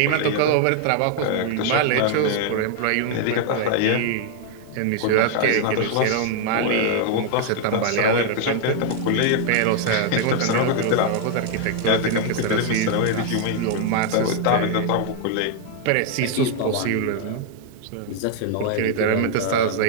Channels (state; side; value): different; both; correlation -0.01